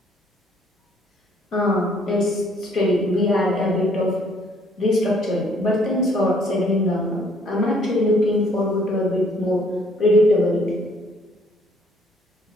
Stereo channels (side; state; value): both; normal; correlation 0.62